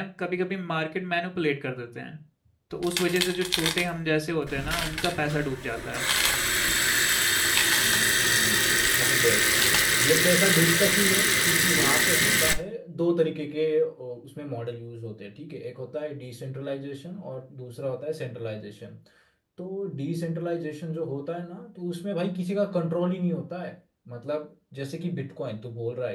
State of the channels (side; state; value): both; identical; correlation 1.00